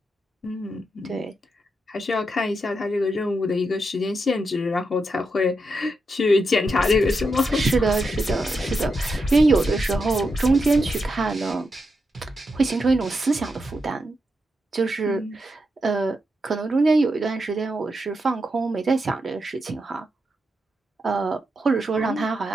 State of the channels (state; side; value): normal; both; correlation 0.85